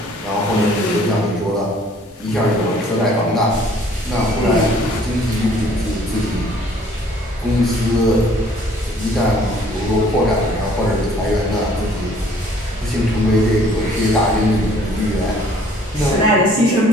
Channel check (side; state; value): both; normal; correlation 0.57